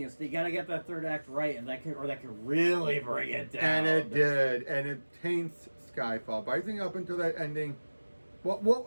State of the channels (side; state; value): both; inverted; correlation -1.00